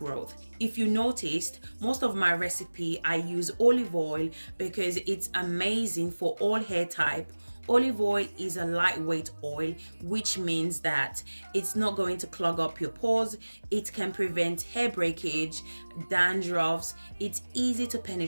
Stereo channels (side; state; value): both; inverted; correlation -1.00